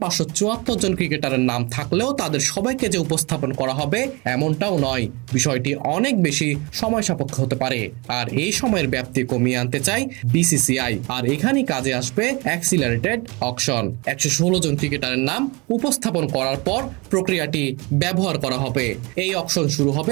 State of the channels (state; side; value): quieter; left; 27.0 dB